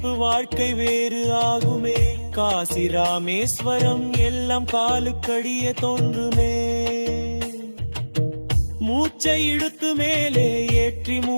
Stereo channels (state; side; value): inverted; both; correlation -1.00